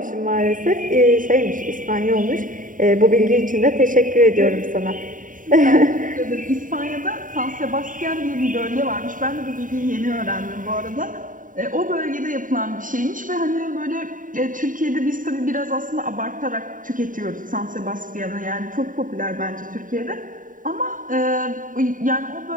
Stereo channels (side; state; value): left; late; 0.39 ms